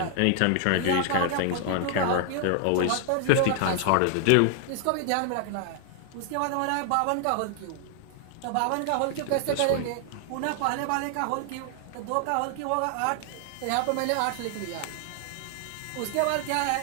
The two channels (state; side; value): different; both; correlation 0.00